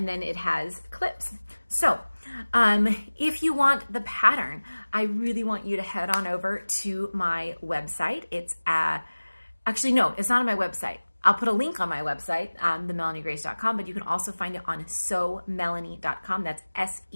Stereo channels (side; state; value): both; inverted; correlation -1.00